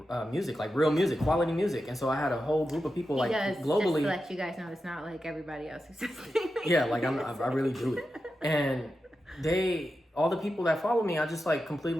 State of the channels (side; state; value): both; normal; correlation 0.90